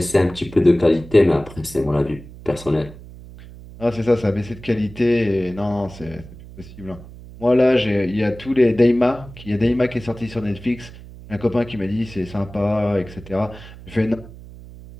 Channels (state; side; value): noise; right; hum, 17 dB below the sound